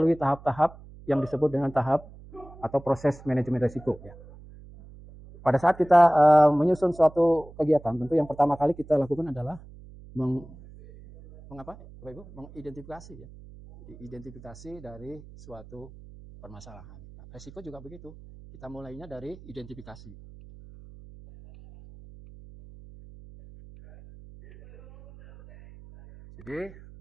tahap-tahap yang disebut dengan tahap atau proses manajemen risiko, ya. Pada saat kita menyusun suatu kegiatan, tentu yang pertama kali kita lakukan adalah mengidentifikasi, ya, identifikasi dari suatu permasalahan. Nah, risiko juga begitu. Kita mulainya dari identifikasi. Jadi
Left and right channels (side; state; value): right; noise; hum, 19 dB below the sound